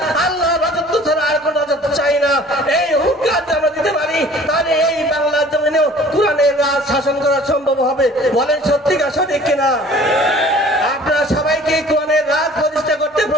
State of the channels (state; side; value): normal; both; correlation 0.49